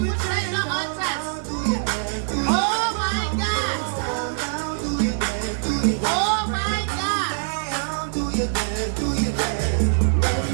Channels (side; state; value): left; silent; digital silence